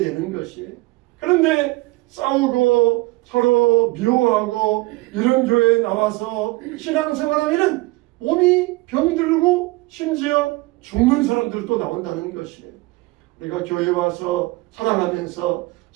것이에요. 그런데 싸우고 서로 미워하고 이런 교회에 나와서 신앙생활하면 몸이 병들고 심지어 죽는 사람들도 나온다는 것이에요. 우리가 교회에 와서 사랑하면서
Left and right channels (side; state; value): left; quieter; 22.1 dB